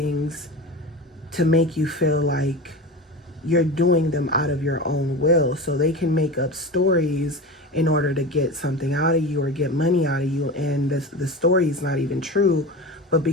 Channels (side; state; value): both; normal; correlation 0.28